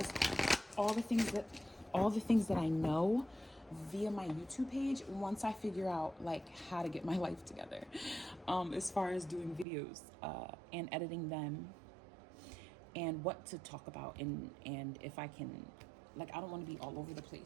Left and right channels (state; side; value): drops out; left; at 9.7 s